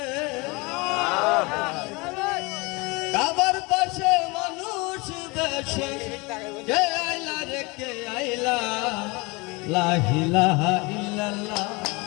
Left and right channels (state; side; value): quieter; right; 26.3 dB